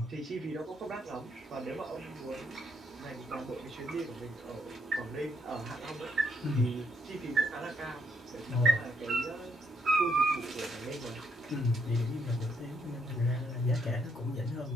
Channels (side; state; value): both; normal; correlation 0.74